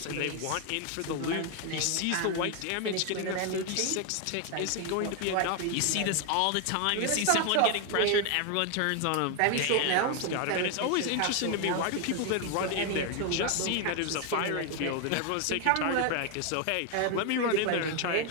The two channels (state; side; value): different; both; correlation 0.01